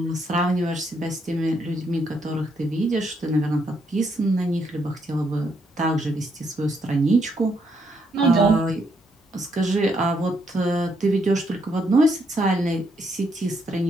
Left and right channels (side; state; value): both; normal; correlation 0.75